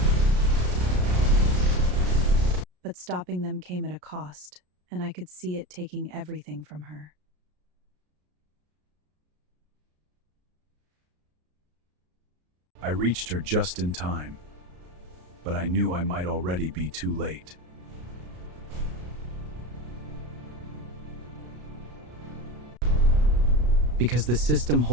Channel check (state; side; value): late; left; 33 ms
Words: But stopping them came at a cost, and I could see it taking everything from her. I reached her just in time, but I knew I might already be too late. Because the system